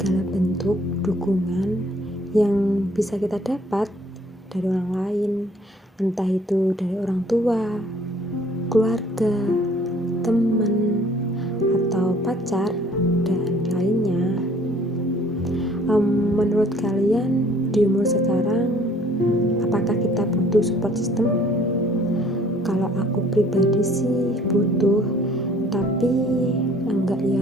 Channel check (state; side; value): normal; both; correlation 0.57